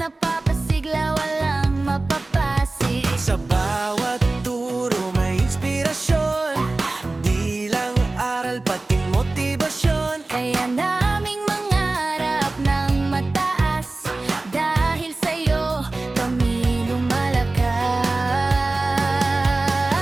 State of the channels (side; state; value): left; quieter; 3.1 dB